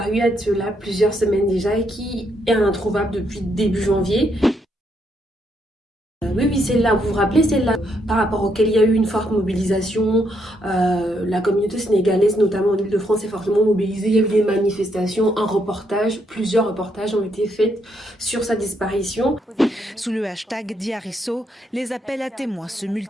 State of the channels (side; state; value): both; normal; correlation 0.76